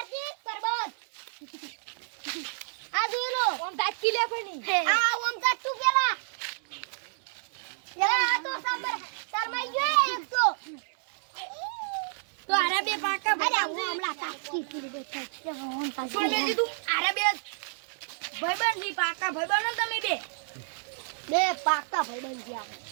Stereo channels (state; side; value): silent; left; digital silence